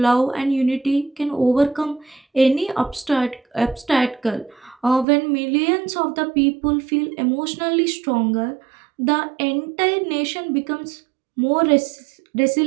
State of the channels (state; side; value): drops out; left; at 5.1 s